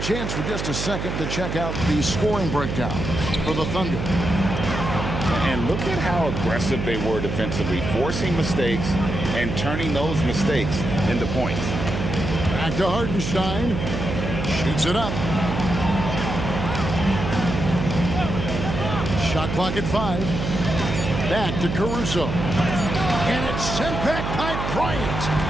for just a second to check out the scoring breakdown for the Thunder. And look at how aggressive they were defensively, forcing mistakes and turning those mistakes into points. Back to Hartenstein. Shoots it up. Shot clock at 5. Back to Caruso. And it's sent back by Bryant.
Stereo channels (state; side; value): noise; right; hum, 4 dB below the sound